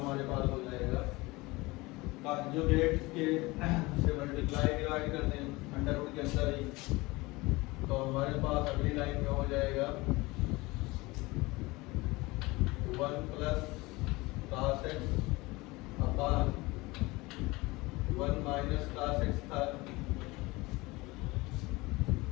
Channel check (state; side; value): quieter; right; 22.3 dB